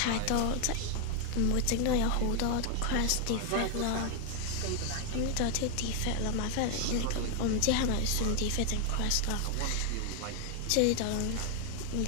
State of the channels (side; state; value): both; different; correlation 0.00